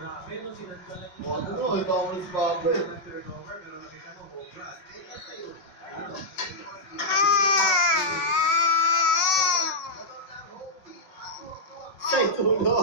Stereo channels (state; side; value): late; right; 5.6 ms